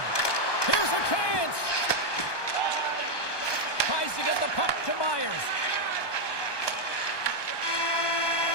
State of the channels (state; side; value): late; right; 1.2 ms